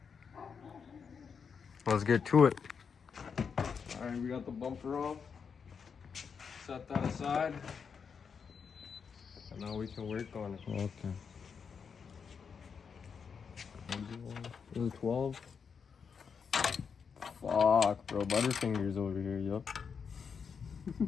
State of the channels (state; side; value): quieter; right; 6.2 dB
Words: Let's get to it. Alright, we got the bumper off. Set that aside. And now we can work on it. Okay. 12. Fuck, bro. Butterfingers over here, yup.